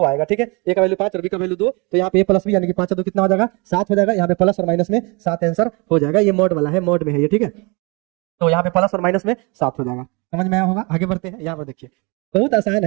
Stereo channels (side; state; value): left; quieter; 29.4 dB